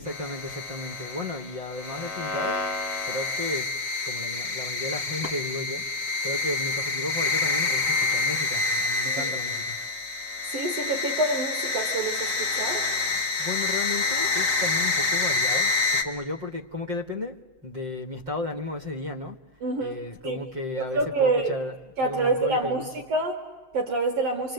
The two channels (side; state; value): left; late; 7.7 ms